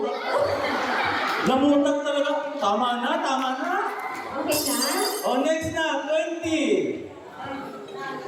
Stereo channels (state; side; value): identical; both; correlation 1.00